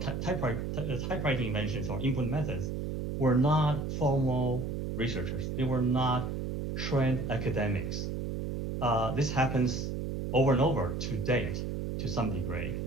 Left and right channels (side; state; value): right; noise; hum, 3 dB below the sound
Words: inventions or input methods, were not formal researchers. They were not trained academics. This happens over and over to date, to some degree.